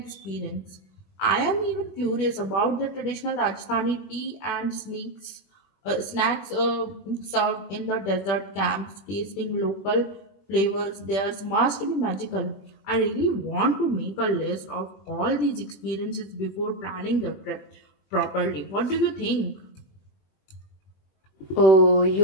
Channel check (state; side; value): late; right; 21 ms